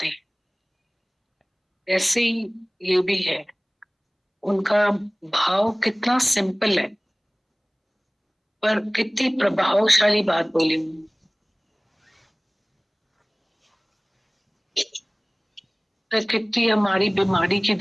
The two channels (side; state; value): both; identical; correlation 1.00